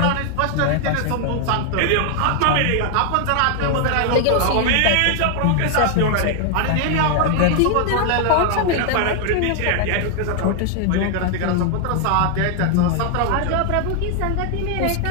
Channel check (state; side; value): different; both; correlation 0.00